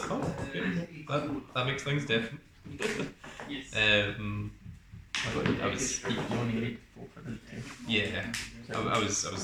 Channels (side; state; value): both; identical; correlation 1.00